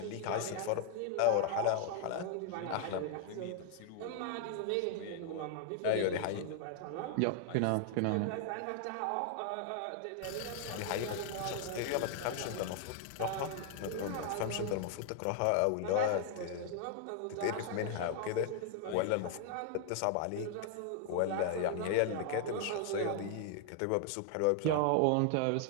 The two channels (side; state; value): both; different; correlation 0.00